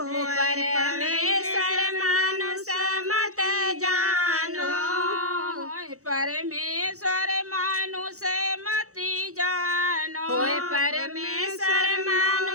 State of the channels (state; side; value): late; left; 0.65 ms